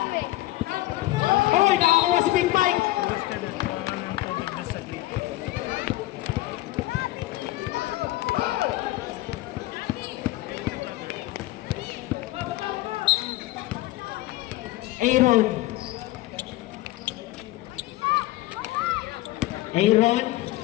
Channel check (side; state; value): right; quieter; 17.5 dB